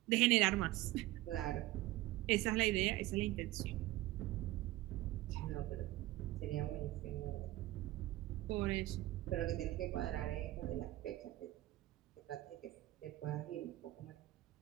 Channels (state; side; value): quieter; left; 17.1 dB